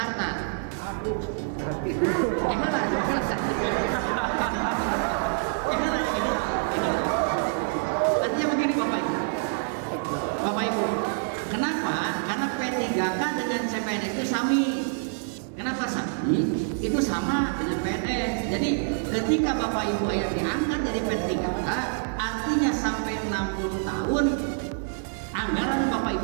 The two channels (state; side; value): silent; left; 60 dB below the other